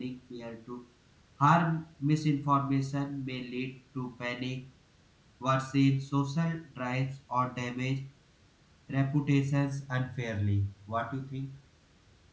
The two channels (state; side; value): identical; both; correlation 1.00